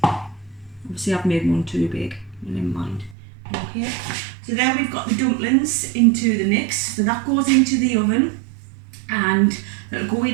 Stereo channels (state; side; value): drops out; left; at 3.2 s